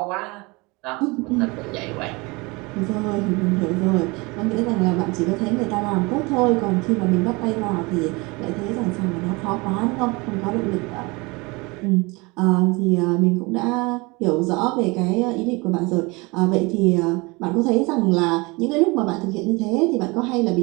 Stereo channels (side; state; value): left; quieter; 25.8 dB